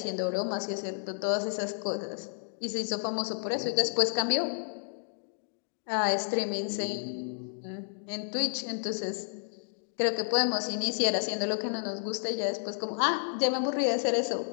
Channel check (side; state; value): right; silent; digital silence